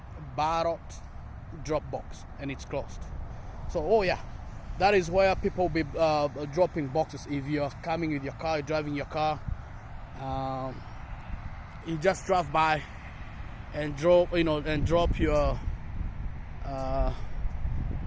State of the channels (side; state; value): both; identical; correlation 1.00